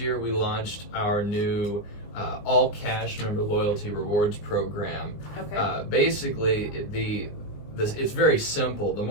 we launched our new all cash member loyalty rewards program. Okay. Basically, it's very simple. The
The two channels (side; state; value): right; late; 19 ms